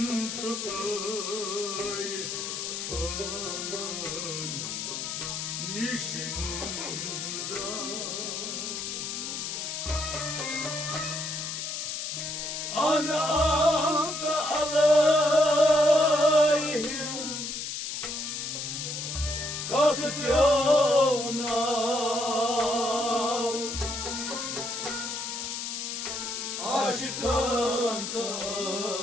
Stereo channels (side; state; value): left; noise; hiss, 4 dB below the sound